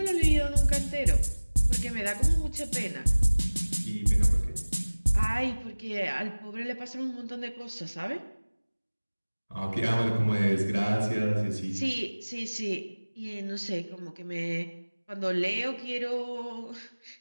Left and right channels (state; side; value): inverted; both; correlation -1.00